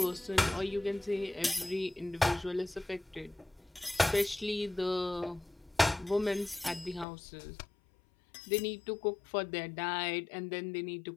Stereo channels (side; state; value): right; drops out; at 7.1 s